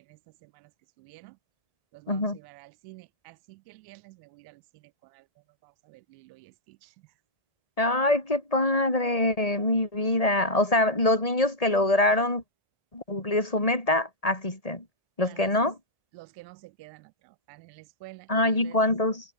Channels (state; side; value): late; right; 1.8 ms